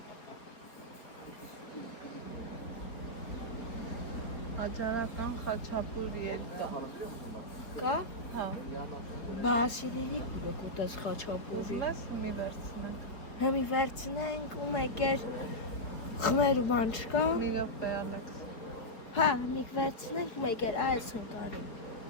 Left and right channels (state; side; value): late; right; 4.4 ms